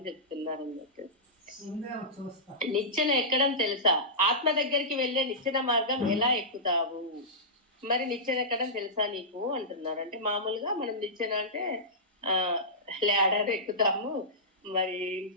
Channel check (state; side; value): normal; both; correlation -0.17